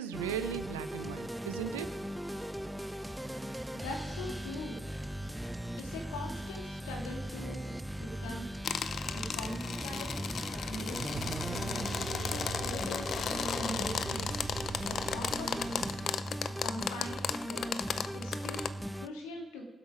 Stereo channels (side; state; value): both; normal; correlation 0.76